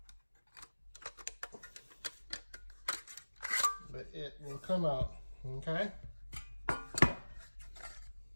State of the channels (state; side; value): inverted; both; correlation -1.00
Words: But it will come out. Okay,